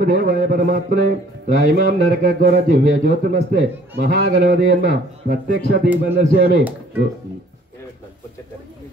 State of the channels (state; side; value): normal; both; correlation 0.57